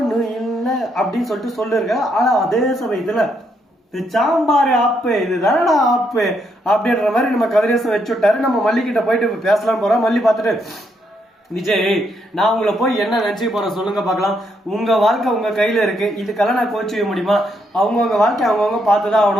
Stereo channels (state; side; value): normal; both; correlation 0.76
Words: இல்லை அப்படின்னு சொல்லிட்டு சொல்லிருக்க. ஆனா அதே சமயத்துல சாம்பார் ஆப்பு இதுதானடா ஆப்பு அப்படின்ற மாதிரி நம்ம கதிரேசன் வச்சு விட்டாரு. நம்ம மல்லி கிட்ட போயிட்டு பேசலாம் போறோம். மல்லி பார்த்துட்டு, விஜய் நான் உங்களை போய் என்ன நினைச்சு போறேன் சொல்லுங்க பார்க்கலாம். உங்க வாழ்க்கை உங்க கையில இருக்கு, இதுக்கெல்லாம் நான் கோச்சிக்க முடியுமா? அவங்கவுங்க வாழ்க்கை அவங்கவுங்க பார்த்துதான்